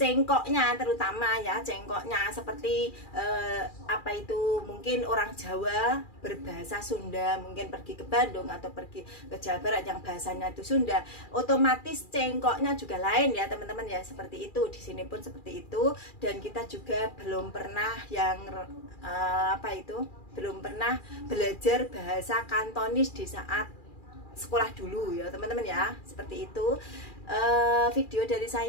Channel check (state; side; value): late; right; 2.4 ms